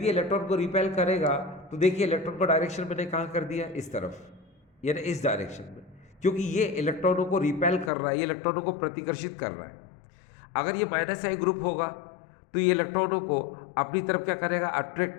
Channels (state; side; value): drops out; right; at 7.9 s